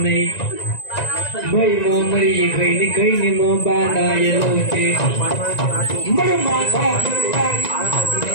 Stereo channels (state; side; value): late; right; 1.9 ms